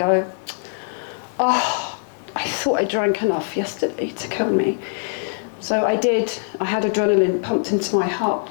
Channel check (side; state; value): right; silent; 64 dB below the other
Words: "Oh, I thought I drank enough yesterday to kill me." So I did. I had adrenaline pumped into my